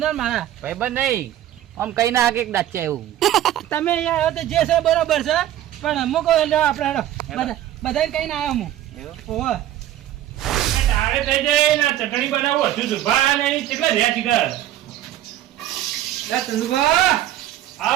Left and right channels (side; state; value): left; quieter; 12.7 dB